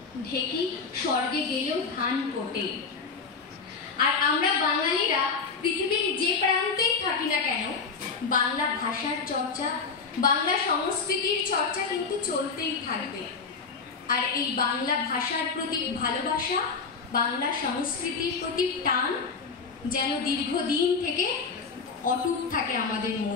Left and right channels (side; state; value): right; quieter; 5.0 dB